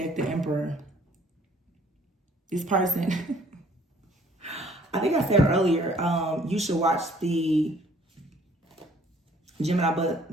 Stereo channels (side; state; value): both; normal; correlation 0.59